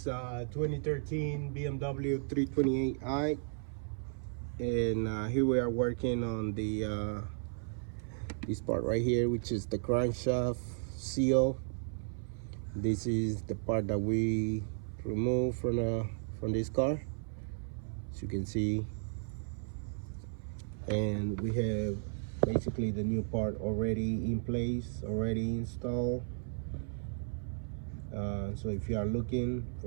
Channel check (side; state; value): left; silent; 55 dB below the other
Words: 2013 BMW 328i, and here we are working on the this part right here, which is the crankshaft seal. This is the part that we removed from this car, as you can see, and we have basically the new part already in place, already installed. So if you are looking